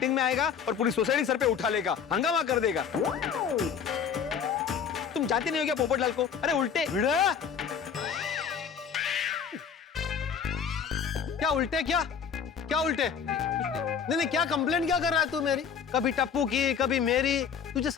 में आएगा और पूरी सोसाइटी सर पे उठा लेगा, हंगामा कर देगा। तुम जानते नहीं हो क्या पोपटलाल को? अरे उल्टे। क्या उल्टे? क्या उल्टे? नहीं, क्या कंप्लेंट क्या कर रहा है तू मेरी? कभी टप्पू की, कभी मेरी। तुझे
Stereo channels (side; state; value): right; quieter; 7.1 dB